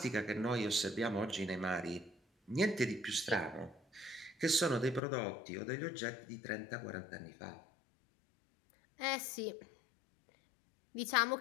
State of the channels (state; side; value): drops out; right; at 5.0 s